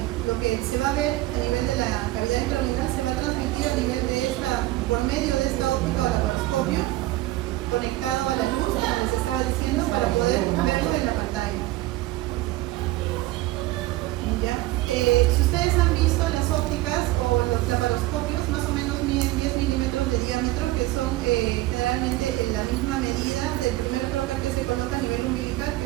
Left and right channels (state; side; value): quieter; left; 17.6 dB